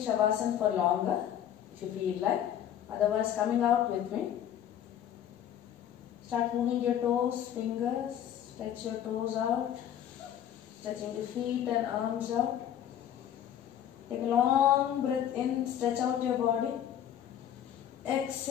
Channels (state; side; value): quieter; right; 10.3 dB